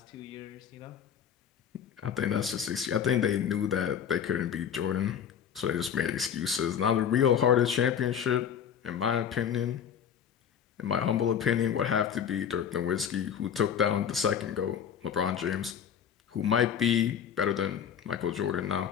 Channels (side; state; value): right; quieter; 8.2 dB